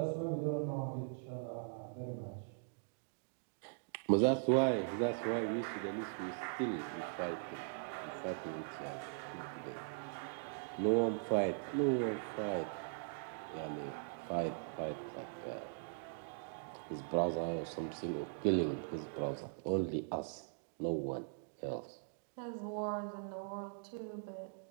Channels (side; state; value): left; silent; digital silence